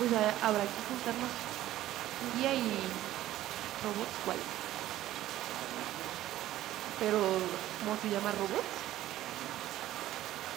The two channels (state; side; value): quieter; left; 14.1 dB